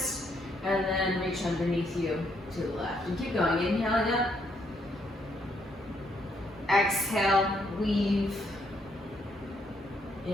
And then reach underneath you to the left. And keep going, inhaling up. Exhale, weave.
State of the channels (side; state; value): both; normal; correlation 0.73